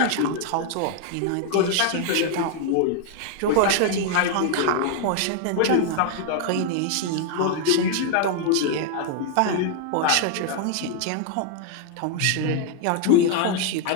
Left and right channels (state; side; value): different; both; correlation 0.00